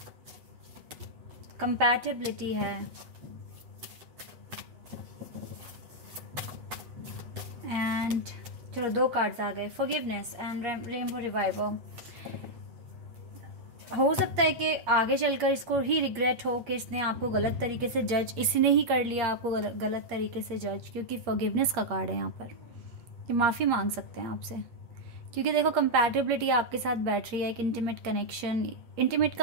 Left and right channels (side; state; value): left; late; 8.5 ms